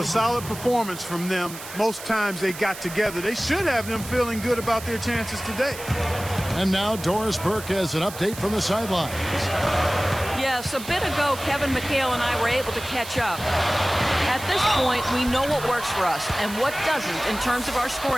solid performance from them. Most times they got together. They should have them feeling good about their chances today. And now Doris Burke has an update from the sidelines. Yes, a bit ago, Kevin McHale and I were able to catch up. At this point, we know what works for us and what doesn't in terms of our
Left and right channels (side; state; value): right; noise; hiss, 13 dB below the sound